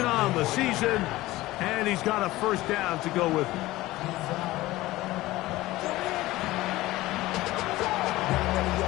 on the season, and he's got a first down to go with him.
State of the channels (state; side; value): quieter; right; 17.8 dB